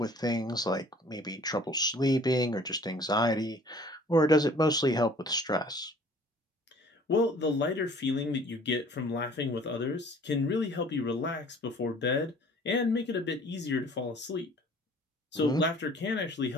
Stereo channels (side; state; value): both; normal; correlation 0.52